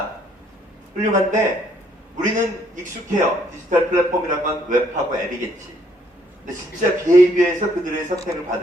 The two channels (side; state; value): both; normal; correlation 0.67